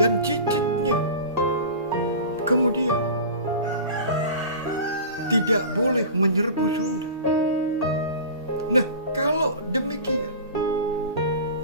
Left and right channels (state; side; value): inverted; both; correlation -0.35